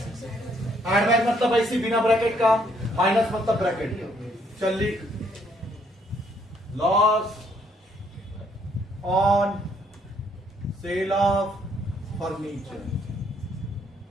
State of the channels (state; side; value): normal; both; correlation 0.68